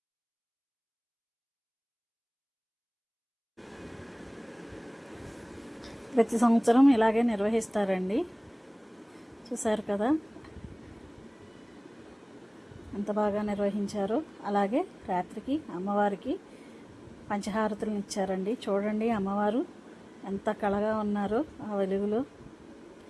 ప్రతి సంవత్సరం ఇలాగే నిర్వహిస్తారండి. చూసారు కదా ఎంత బాగా నిర్వహించారో. అలాగే రాత్రికి అమ్మవారికి పంచహారతులను ఇచ్చారండి. చూడండి అమ్మవారు ఎంత కళగా ఉన్నారో ఆ వెలుగులో.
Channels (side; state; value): both; identical; correlation 1.00